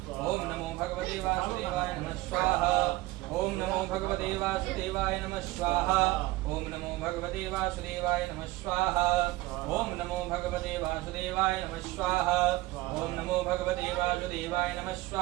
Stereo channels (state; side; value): quieter; left; 19.0 dB